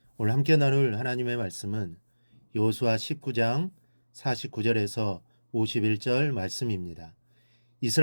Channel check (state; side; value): inverted; both; correlation -1.00